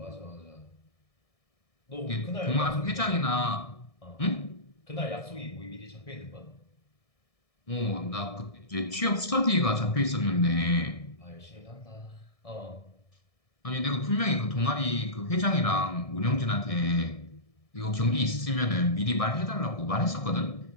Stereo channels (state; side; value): late; right; 1.7 ms